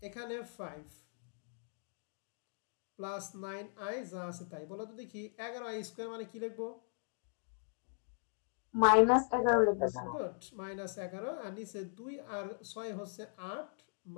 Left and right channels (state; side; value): silent; right; digital silence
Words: এখানে 5 +9i যা আছে তাই, বলো তো দেখি 11i স্কোয়ার মানে কি লিখবো? -11 লিখবে স্যার গুড, -11, আর নিচে 2 আর 6 হচ্ছে 8